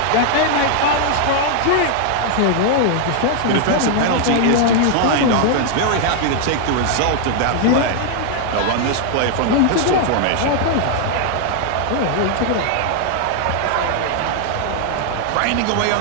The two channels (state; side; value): different; both; correlation 0.00